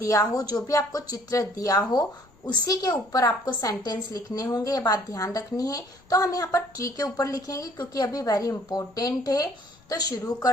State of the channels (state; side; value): noise; left; rumble, 29 dB below the sound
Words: हो, जो भी आपको चित्र दिया हो, उसी के ऊपर आपको सेंटेंस लिखने होंगे, ये बात ध्यान रखनी है। तो हम यहाँ पर ट्री के ऊपर लिखेंगे क्योंकि अभी वेरी इंपॉर्टेंट है। तो शुरू